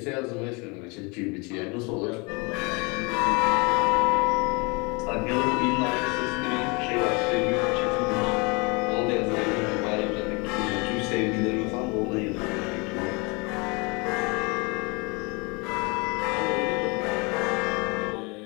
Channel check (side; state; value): right; quieter; 29.0 dB